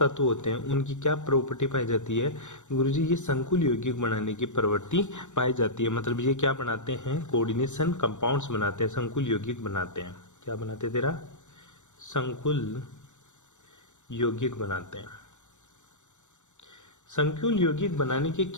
होते हैं, उनकी क्या प्रॉपर्टी पाई जाती है गुरुजी? ये संकुल यौगिक बनाने की प्रवृत्ति पाई जाती है। मतलब ये क्या बनाते हैं? कोऑर्डिनेशन कंपाउंड्स बनाते हैं, संकुल यौगिक बनाते हैं। क्या बनाते हैं तेरा? संकुल यौगिक बनाते हैं। संकुल यौगिक बनाने के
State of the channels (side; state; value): right; late; 0.84 ms